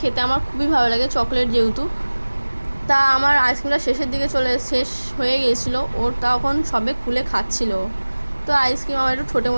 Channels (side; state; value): both; inverted; correlation -1.00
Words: খেতে আমার খুবই ভালো লাগে, চকলেট যেহেতু। তা আমার আইসক্রিমটা শেষের দিকে শেষ হয়ে গিয়েছিলো, ওর তখন সবে খুলে খাচ্ছিল। তো আইসক্রিম আমার একটু ছোটো